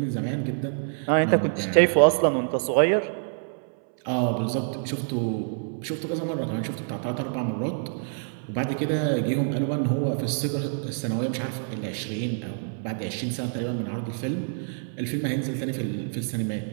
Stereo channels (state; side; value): silent; left; 60 dB below the other